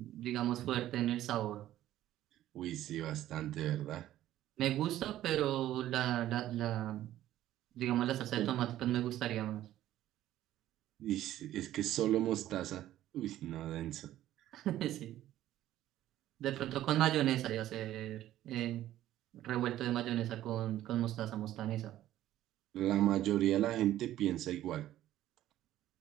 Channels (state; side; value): quieter; left; 13.4 dB